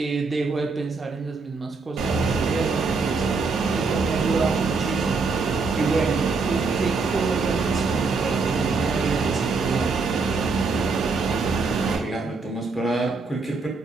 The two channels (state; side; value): quieter; left; 4.2 dB